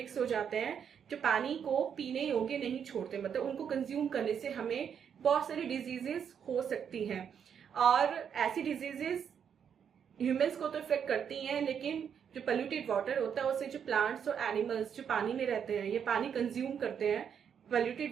हो जाते हैं जो पानी को पीने योग्य नहीं छोड़ते, मतलब उनको कंज्यूम करने से हमें बहुत सारी डिजीजेस हो सकती हैं. और ऐसी डिजीजेस ह्यूमंस को तो इफेक्ट करती हैं, लेकिन जो पोल्यूटेड वाटर होता है उससे जो प्लांट्स और एनिमल्स जो पानी में रहते हैं, ये पानी कंज्यूम करते हैं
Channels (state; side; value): quieter; left; 7.8 dB